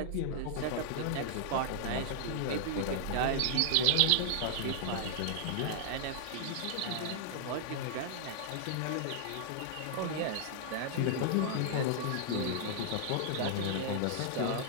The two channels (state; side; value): different; both; correlation -0.01